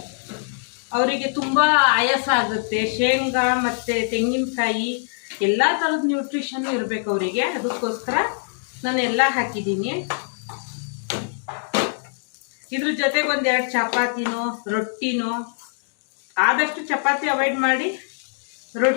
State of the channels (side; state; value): right; silent; digital silence